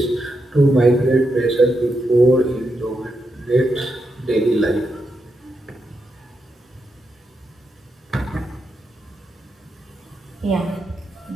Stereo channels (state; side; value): normal; both; correlation 0.85